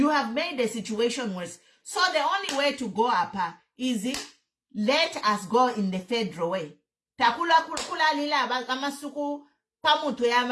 have made the situation worse. So the only way to go up is let us go in the federal way. If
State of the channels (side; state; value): both; identical; correlation 1.00